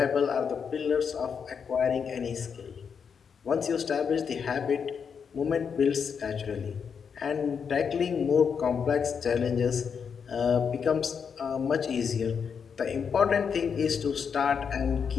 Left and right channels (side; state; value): right; quieter; 6.6 dB